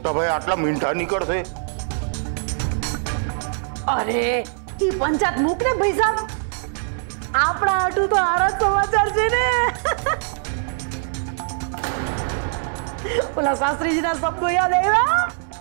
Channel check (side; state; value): left; silent; 64 dB below the other